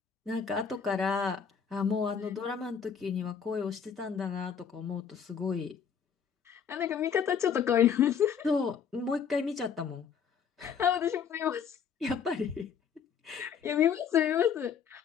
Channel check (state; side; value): quieter; right; 7.1 dB